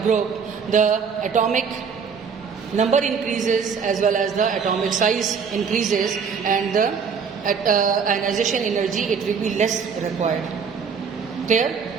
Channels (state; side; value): quieter; left; 6.1 dB